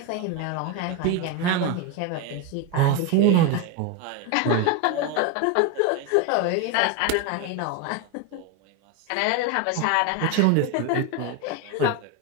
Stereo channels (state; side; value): different; both; correlation 0.02